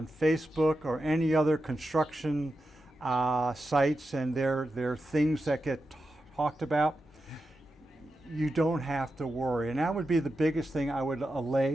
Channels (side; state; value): both; normal; correlation 0.89